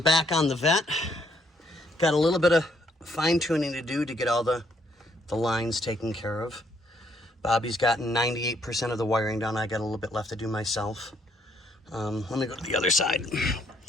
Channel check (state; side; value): normal; both; correlation 0.69